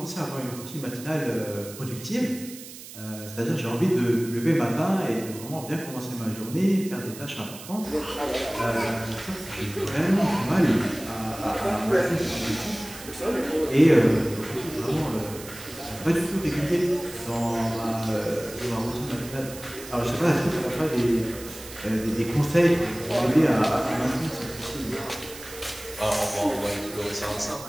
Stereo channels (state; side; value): noise; right; hiss, 15 dB below the sound